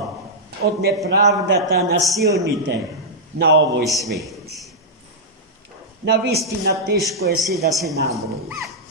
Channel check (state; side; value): normal; both; correlation -0.09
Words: от неправдата на силните на овој свет. Навистина тешко е се да се наброи.